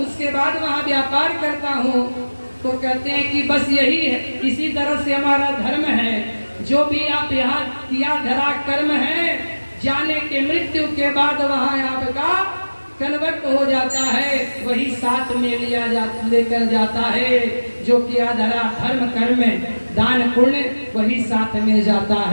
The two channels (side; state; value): both; inverted; correlation -1.00